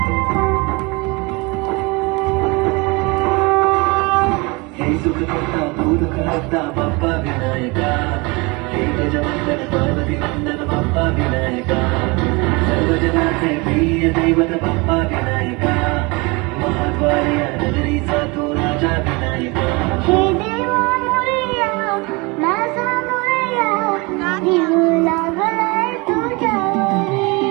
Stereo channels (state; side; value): quieter; left; 26.9 dB